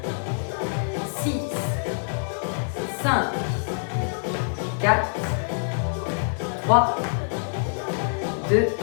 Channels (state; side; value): silent; right; 61 dB below the other